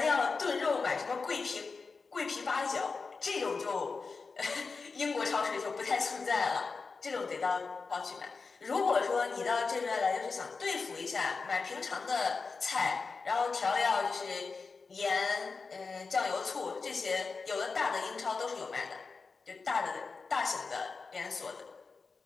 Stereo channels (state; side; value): quieter; right; 4.5 dB